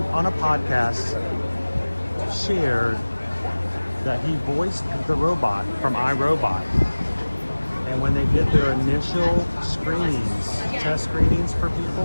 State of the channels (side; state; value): both; inverted; correlation -1.00